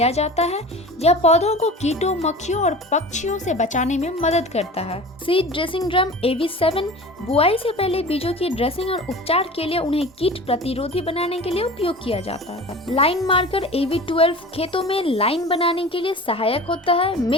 जाता है। यह पौधों को कीटों, मक्खियों और पक्षियों से बचाने में मदद करता है। सीड ड्रेसिंग ड्रम AV7 बुआई से पहले बीजों की ड्रेसिंग और उपचार के लिए उन्हें कीट प्रतिरोधी बनाने के लिए उपयोग किया जाता है। लाइन मार्कर AV12 खेतों में लाइन बनाने के लिए सहायक होता है।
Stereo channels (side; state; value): both; normal; correlation 0.37